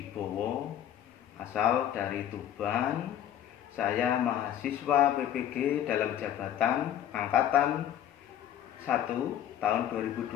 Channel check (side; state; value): right; quieter; 10.7 dB